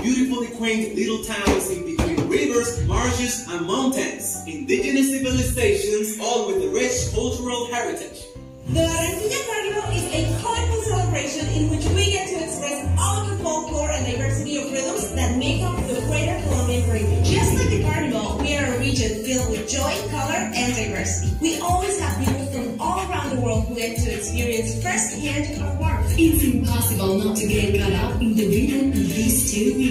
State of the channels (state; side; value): identical; both; correlation 1.00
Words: beautifully quaint little towns in between rivers, marshes, and mountains. Indigenous civilizations, all with a rich cultural heritage. The Barranquilla Carnival is a colorful celebration in which we get to express all of the folklore and diversity of rhythms that make up the Greater Colombian Caribbean. Just like the Carnival, we are a region filled with joy, color, and diversity. We always have people from all around the world who get to experience firsthand our warmth. It's impossible not to get caught up in the rhythm of these two